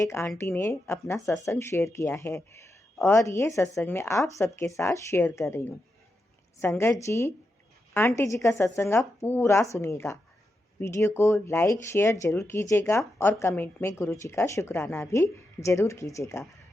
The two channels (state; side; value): normal; both; correlation 0.87